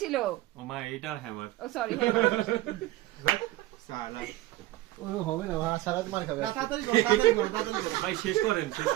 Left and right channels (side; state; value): left; quieter; 17.1 dB